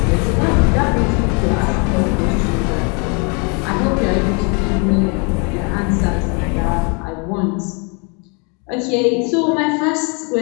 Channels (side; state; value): right; quieter; 34.3 dB